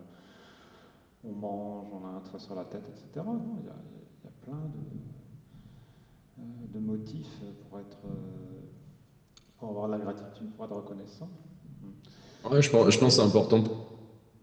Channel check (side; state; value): both; identical; correlation 1.00